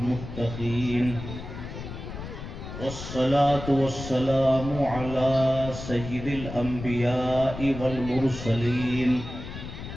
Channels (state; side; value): noise; left; rumble, 10 dB below the sound